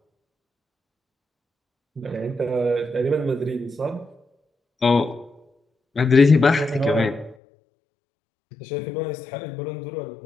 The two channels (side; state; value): right; drops out; at 7.4 s